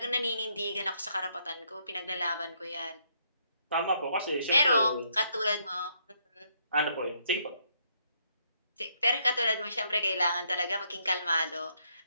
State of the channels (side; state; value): both; inverted; correlation -0.72